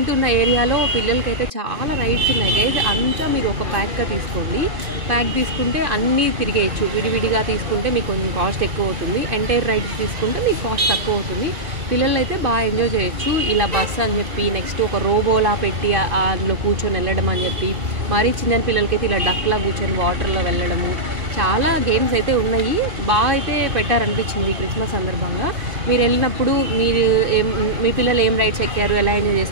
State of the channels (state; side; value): late; left; 2.6 ms